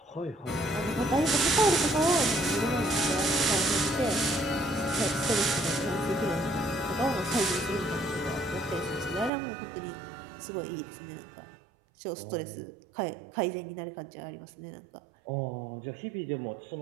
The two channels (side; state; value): left; drops out; at 9.3 s